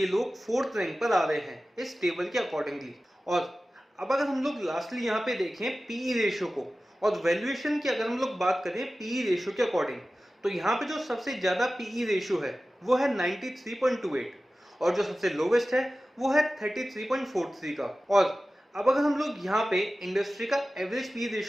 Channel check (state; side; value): normal; both; correlation 0.95